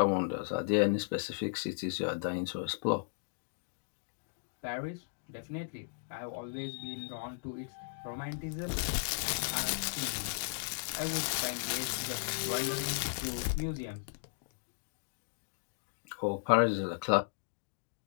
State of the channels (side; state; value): right; silent; digital silence